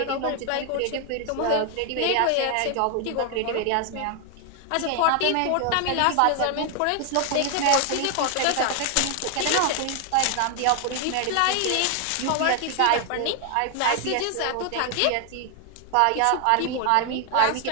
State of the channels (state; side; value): different; both; correlation 0.00